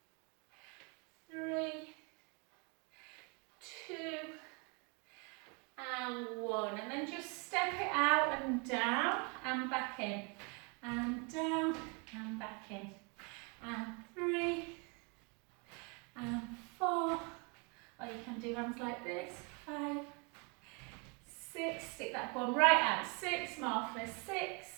3, 2, and 1. And then just step it out and down and back in. And down and back in. And 3, and 4. Or you can do ones like this. 5, 6. Stick that bum right out. 6 more for 6,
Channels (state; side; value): quieter; left; 33.2 dB